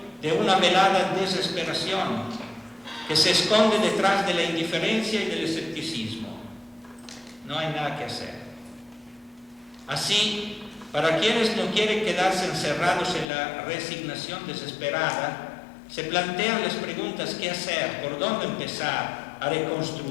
de una velada desesperación que se esconde detrás de la indiferencia y del escepticismo. No hay nada que hacer. Así, para quienes no quieren quedarse encerrados en la resignación desesperada, se plantean las preguntas: ¿qué hacer? ¿Por dónde empezar a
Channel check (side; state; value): right; drops out; at 13.2 s